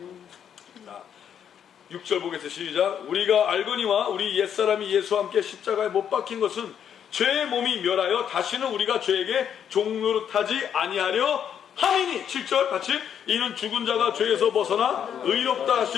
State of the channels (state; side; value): quieter; right; 8.6 dB